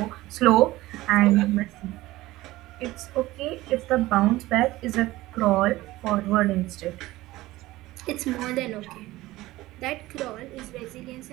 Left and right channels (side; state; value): left; quieter; 17.8 dB